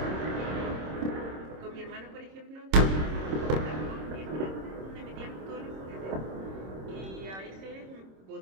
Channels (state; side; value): late; left; 26 ms